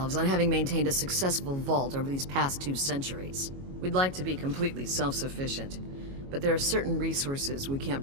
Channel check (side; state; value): left; late; 22 ms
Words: on having maintained a successful vault over these past 2 centuries. We'd like to be completely self-sufficient, but there are certain resources we can't